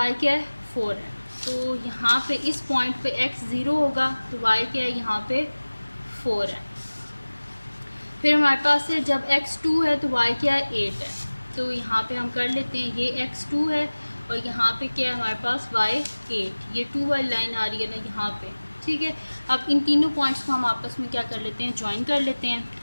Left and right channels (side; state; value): both; inverted; correlation -1.00